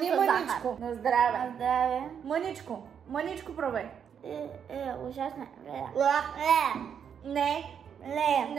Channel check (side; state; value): left; quieter; 7.8 dB